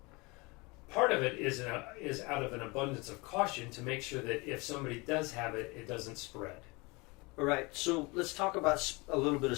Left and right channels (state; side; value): quieter; right; 26.1 dB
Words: Part of it is out of an abundance of caution to make sure that if somebody does have it, it doesn't spread. All right, so let's talk about a little bit of